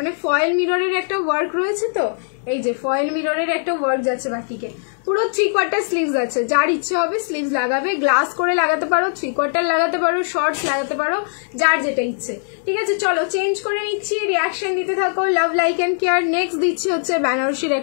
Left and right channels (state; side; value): silent; right; digital silence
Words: ফয়েল মিররের একটা ওয়ার্ক রয়েছে, তো এই যে ফয়েল মিররের একটা ওয়ার্ক যাচ্ছে বাটিকে, পুরো 3/4 স্লিভস আছে। যার ইচ্ছে হবে স্লিভস লাগাবে, গ্লাস করে লাগাতে পারো, 3/4 লাগাতে পারো, শর্টস লাগাতে পারো, যার যেটা ইচ্ছে। ঠিক আছে, চলো চেঞ্জ করে নিচ্ছি, রিয়াকশন দিতে থাকো। Love like and care. Next দিচ্ছি হচ্ছে বেনারসির